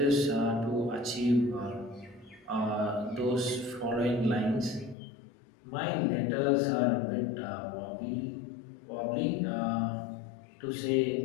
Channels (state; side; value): drops out; right; at 5.0 s